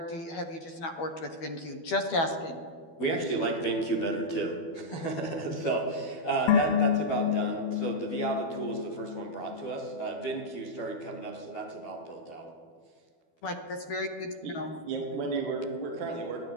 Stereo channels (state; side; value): late; right; 12 ms